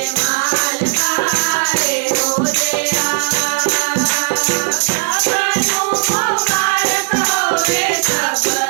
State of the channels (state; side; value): silent; left; digital silence